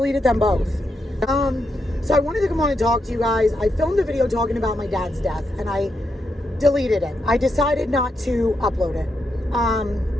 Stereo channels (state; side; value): normal; both; correlation 0.83